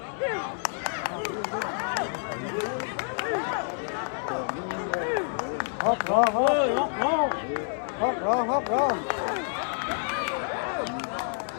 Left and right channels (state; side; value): silent; right; 58 dB below the other